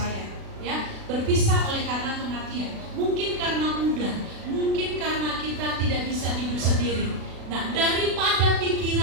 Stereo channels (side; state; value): left; late; 36 ms